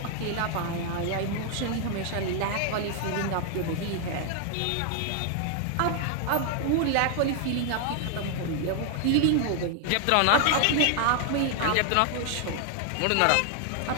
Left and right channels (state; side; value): different; both; correlation 0.00